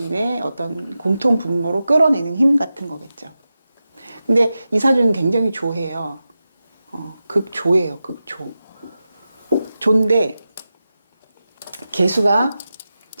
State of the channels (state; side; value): inverted; both; correlation -0.92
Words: 어떤 공통 분모로 끌어내는 힘 같은 거겠죠. 근데 이 사주는 굉장히 조해요. 극조예요, 극조. 조인데 개수가